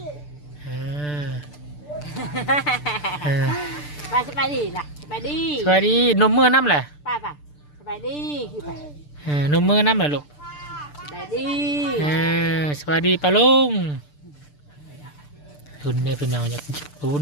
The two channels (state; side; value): late; right; 6.8 ms